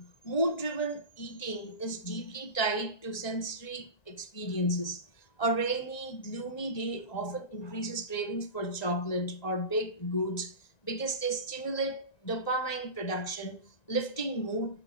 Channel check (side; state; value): right; late; 1.9 ms